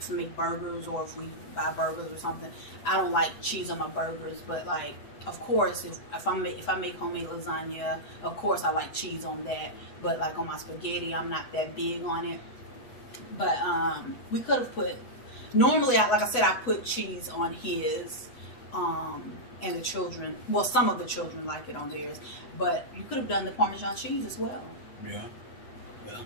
burgers, or if we buy burgers or something, I don't like cheese on my burgers. But of course, if I make homemade lasagna, of course I like cheese on that. But on my spaghetti, I'm not that big on it. But we could have put. Normally, like I said, I put cheese on his, and the children. Well, some of the children like it on theirs. But you could have done the Parmesan cheese as well. Yeah. Yeah.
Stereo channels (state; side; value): late; right; 8.0 ms